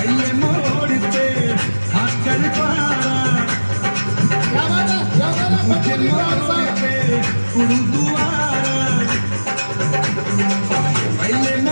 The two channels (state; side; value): inverted; both; correlation -1.00